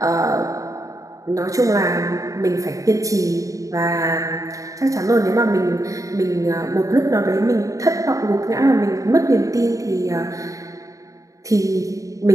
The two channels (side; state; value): left; late; 0.16 ms